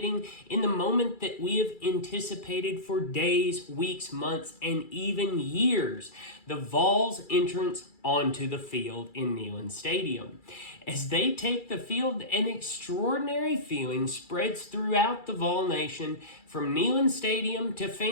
in the moment that we have anticipated for days, weeks, months, and even years, the Vols' entrance onto the field in Neyland Stadium. As they take the field, an extraordinary feeling spreads throughout the Vol Nation, from Neyland Stadium to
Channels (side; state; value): right; late; 2.3 ms